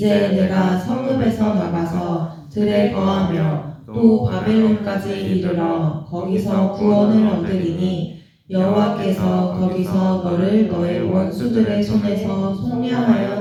내가 성읍에서 나가서 들에 거하며 또 바벨론까지 이르러 거기서 구원을 얻으리니 여호와께서 거기서 너를 너의 원수들의 손에서 속량하여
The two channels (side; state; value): both; identical; correlation 1.00